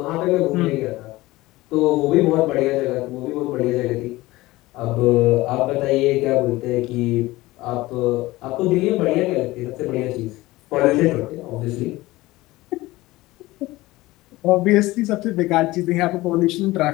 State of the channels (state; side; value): quieter; right; 19.0 dB